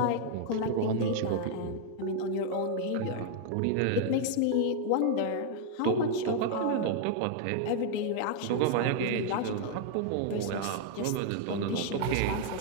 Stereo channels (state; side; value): different; both; correlation 0.00